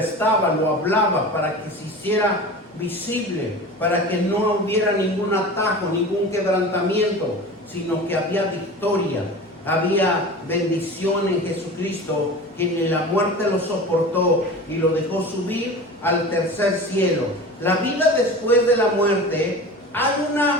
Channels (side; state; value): both; normal; correlation 0.34